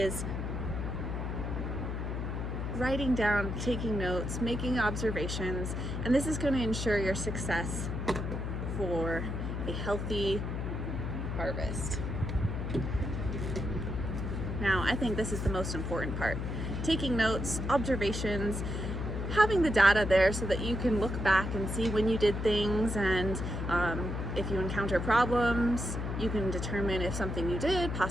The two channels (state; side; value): noise; left; hum, 3 dB below the sound